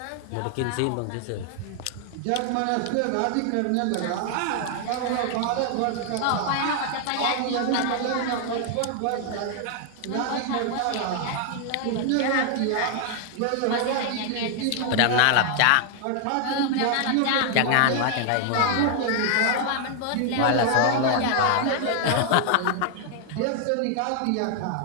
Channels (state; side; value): different; both; correlation 0.00